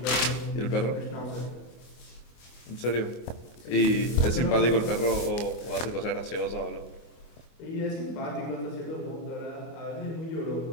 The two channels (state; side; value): late; right; 25 ms